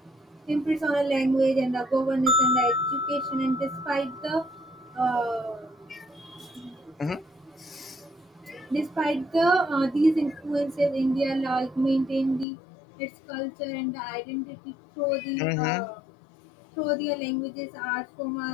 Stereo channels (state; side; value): drops out; right; at 12.5 s